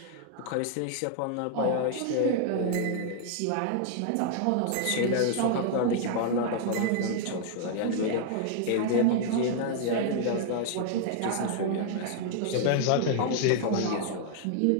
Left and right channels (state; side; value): different; both; correlation 0.00